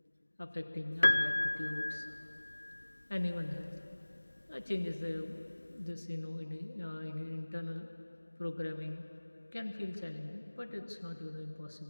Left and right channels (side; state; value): both; inverted; correlation -1.00